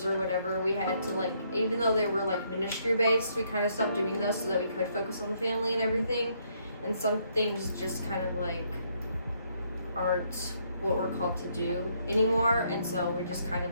or whatever. We had to like, even though they were like ministry based, we kind of stopped doing those so that we could focus on the family and everything. And some things just kind of like aren't what we're called to do anymore, and so we just kind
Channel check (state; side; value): inverted; both; correlation -0.71